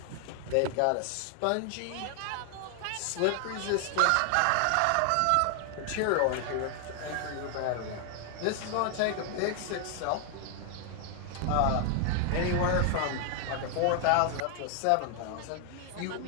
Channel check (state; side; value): different; both; correlation 0.00